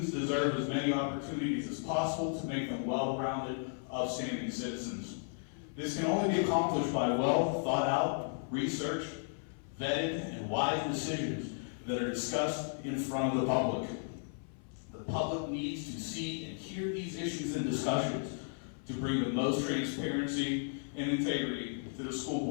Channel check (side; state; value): right; silent; 55 dB below the other